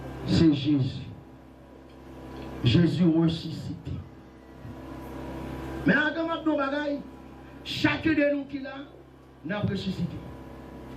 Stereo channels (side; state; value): both; identical; correlation 1.00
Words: C'est Jésus. Jésus ressuscité. Mais encore maintenant, bagaille, chacun de nous qui l'a, n'a ressuscité.